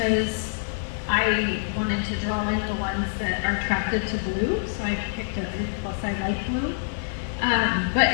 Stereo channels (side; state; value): right; silent; digital silence